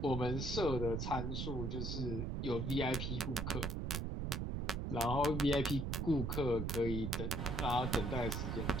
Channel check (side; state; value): right; noise; rumble, 1 dB below the sound